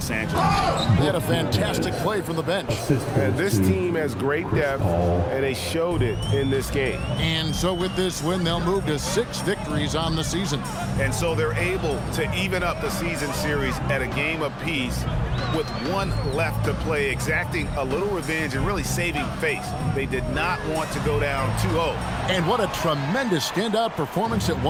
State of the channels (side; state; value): both; identical; correlation 1.00